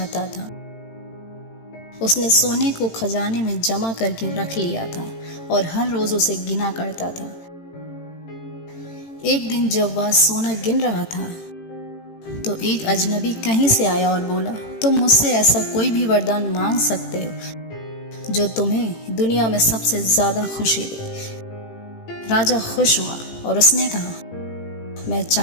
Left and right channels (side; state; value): right; late; 18 ms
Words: था। उसने सोने को खजाने में जमा करके रख लिया था और हर रोज उसे गिना करता था। एक दिन जब वह सोना गिन रहा था तो एक अजनबी कहीं से आया और बोला, तुम मुझसे ऐसा कोई भी वरदान मांग सकते हो जो तुम्हें दुनिया में सबसे ज्यादा खुशी दे। राजा खुश हुआ और उसने कहा, मैं